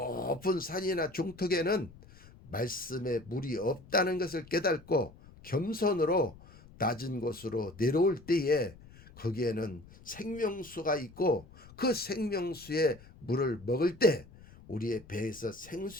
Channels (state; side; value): noise; left; rumble, 21 dB below the sound